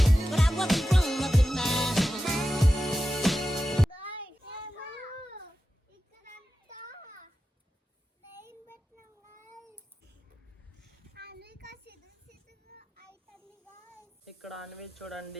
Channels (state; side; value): normal; both; correlation 0.92